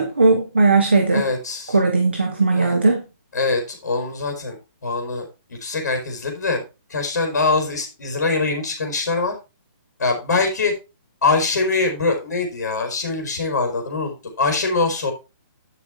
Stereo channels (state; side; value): inverted; both; correlation -0.54